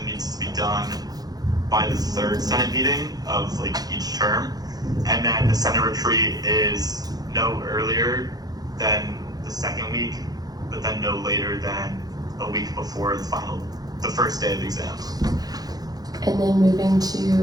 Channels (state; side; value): late; left; 0.19 ms